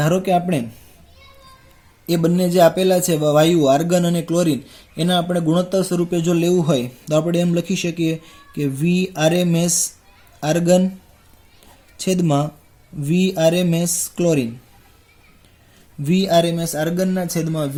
કે આપણે એ બંને જે આપેલા છે વાયુ આર્ગન અને ક્લોરીન એના આપણે ગુણોત્તર સ્વરૂપે જો લેવું હોય તો આપણે એમ લખી શકીએ કે VRMS આર્ગન છેદમાં VRMS ક્લોરીન, VRMS આર્ગનના છેદમાં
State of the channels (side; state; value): both; identical; correlation 1.00